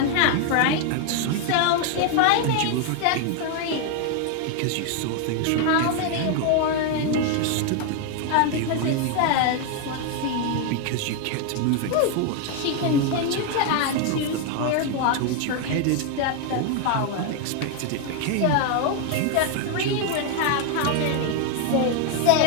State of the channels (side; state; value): both; different; correlation 0.01